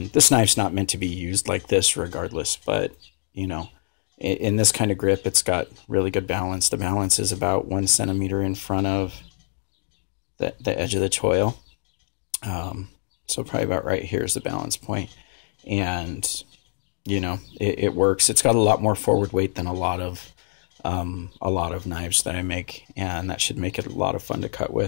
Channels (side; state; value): right; silent; 62 dB below the other